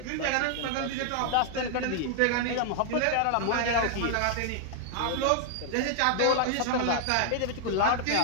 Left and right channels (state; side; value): different; both; correlation 0.00